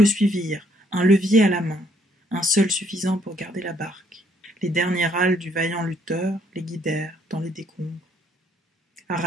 suivirent, un levier à la main, un seul suffisant pour garder la barque. Les derniers râles du vaillant lutteur les guidèrent dans les décombres.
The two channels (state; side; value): normal; both; correlation 0.68